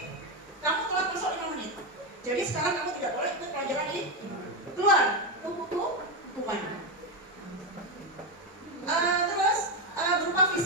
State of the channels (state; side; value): normal; both; correlation 0.09